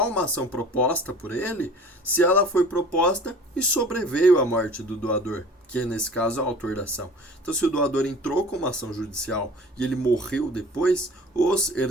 uma ação proposta por ele se ela foi proposta e sobreveio a morte do doador, que é nesse caso o autor da ação. Então, se o doador entrou com uma ação judicial e ele morreu depois, os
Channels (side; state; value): both; normal; correlation 0.45